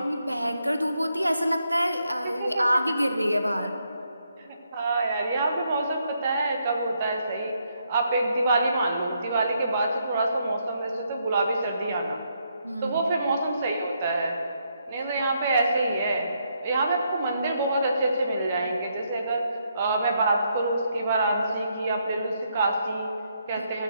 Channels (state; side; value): inverted; both; correlation -0.77